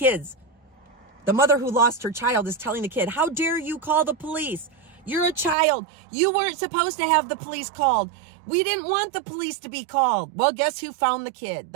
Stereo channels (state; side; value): drops out; left; at 5.6 s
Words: the mother who lost her child is telling the kid, how dare you call the police? You're a child. You weren't supposed to have the police called. We didn't want the police to be called. Well, guess who found the kid?